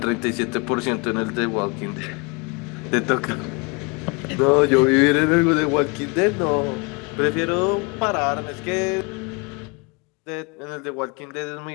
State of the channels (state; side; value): quieter; right; 29.8 dB